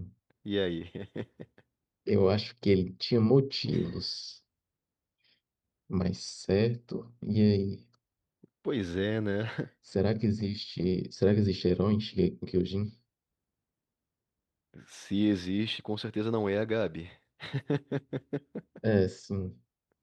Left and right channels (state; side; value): identical; both; correlation 1.00